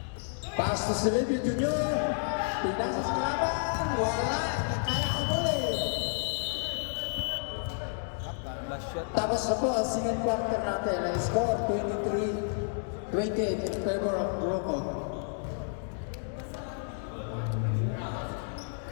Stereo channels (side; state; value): right; silent; digital silence